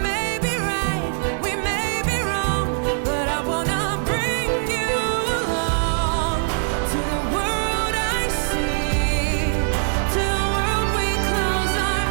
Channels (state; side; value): silent; left; digital silence